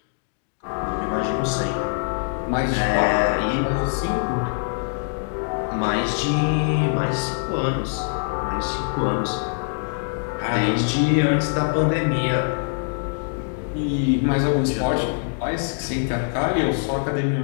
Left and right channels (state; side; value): silent; right; digital silence